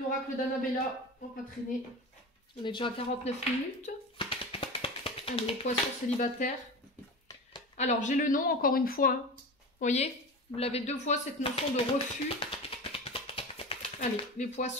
l'oracle d'Annabella. On va pas traîner. On est déjà à 49 minutes. Allez, les poissons célibataires. Alors, j'ai le nom encore une fois. Hein. Vous voyez? Vous l'avez deux fois, cette notion de refus. Allez, les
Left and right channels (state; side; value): normal; both; correlation 0.29